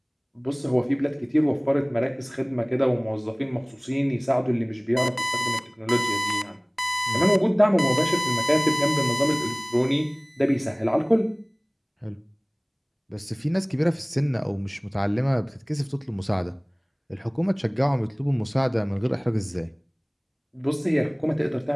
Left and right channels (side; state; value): both; identical; correlation 1.00